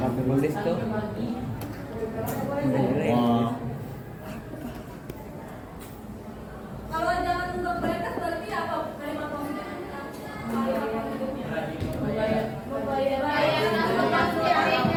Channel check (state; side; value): identical; both; correlation 1.00